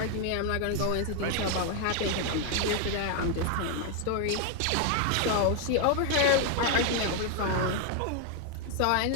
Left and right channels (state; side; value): different; both; correlation 0.01